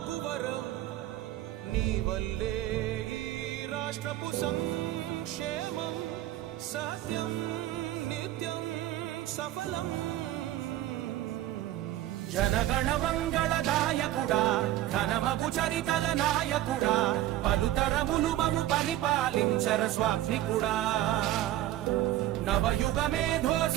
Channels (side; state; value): left; quieter; 14.1 dB